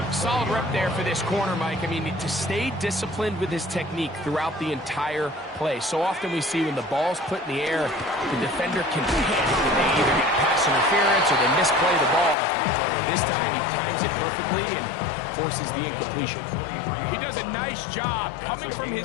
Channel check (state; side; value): drops out; right; at 12.4 s